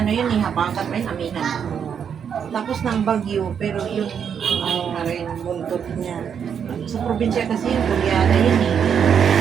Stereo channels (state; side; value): quieter; left; 7.6 dB